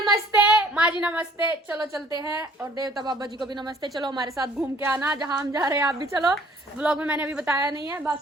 माँ जी नमस्ते। चलो चलते हैं। और देवता बाबा जी को भी नमस्ते। चलो हमारे साथ घूम के आना, जहाँ हम जा रहे हैं आप भी चलो। व्लॉग में मैंने अभी बताया नहीं है,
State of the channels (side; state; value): both; normal; correlation 0.56